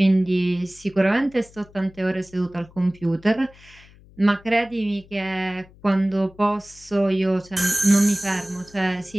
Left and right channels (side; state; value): left; noise; hum, 25 dB below the sound